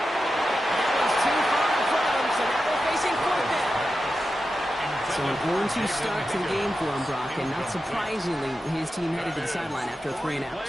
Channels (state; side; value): normal; both; correlation 0.91